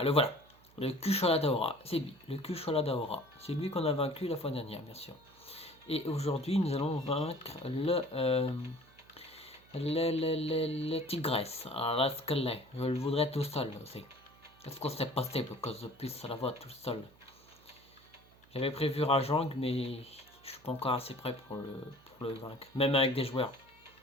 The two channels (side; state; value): right; noise; hum, 27 dB below the sound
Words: le voilà. Le Kushala Daora, c'est lui. Le Kushala Daora. C'est lui qu'on a vaincu la fois dernière, bien sûr. Et aujourd'hui, nous allons vaincre le Tigresse. Alors là, ce qu'elle est. Je le voudrais tout seul aussi. Est-ce que c'est possible que je puisse la voir tout seul? J'avais prévu Rajang, mais je suis pas encore assez prêt pour le vaincre. Même avec des joueurs.